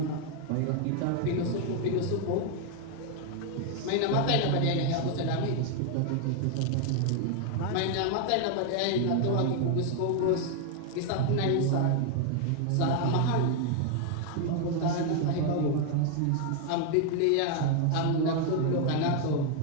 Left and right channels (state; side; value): different; both; correlation 0.01